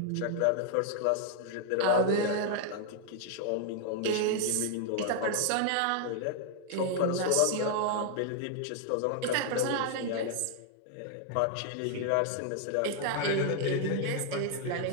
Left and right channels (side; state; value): both; different; correlation 0.00